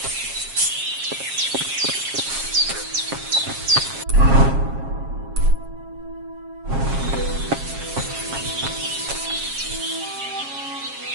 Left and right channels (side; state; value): left; late; 7.4 ms